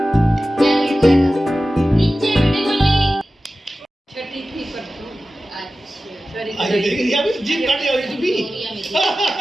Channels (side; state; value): both; normal; correlation 0.95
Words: अरे देख लिया अभी जीप काटे हुई तू भी।